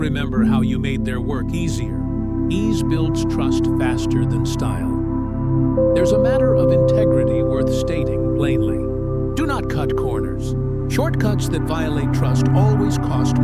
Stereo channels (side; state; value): both; identical; correlation 1.00